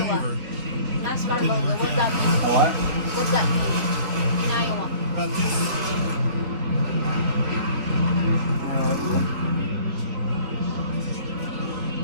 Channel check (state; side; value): late; left; 3.5 ms